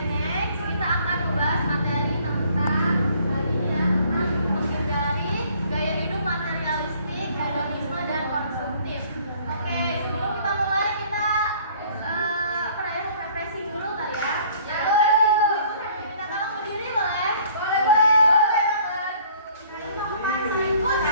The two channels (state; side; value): inverted; both; correlation -0.57